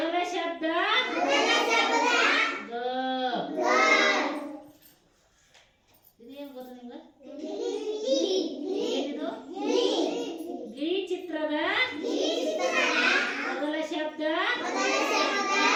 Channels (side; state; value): both; identical; correlation 1.00